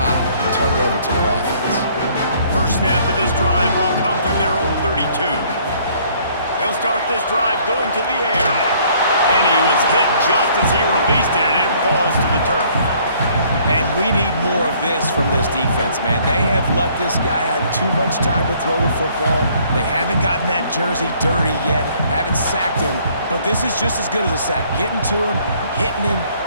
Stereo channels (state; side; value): inverted; both; correlation -0.61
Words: and turn it over to their offense. First snap of this drive will come from their own 32. They'll start this drive going to the air. And he was hit just as he released it, and it falls to the turf. And we need more of this from this defense, man. They have let this guy have too much time to throw the football. They haven't gotten that jersey dirty yet, haven't sacked him. But this is just as good as a sack. Getting to him, hitting him,